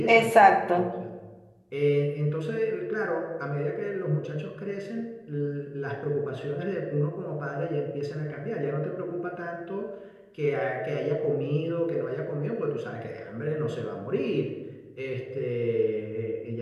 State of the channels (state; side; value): identical; both; correlation 1.00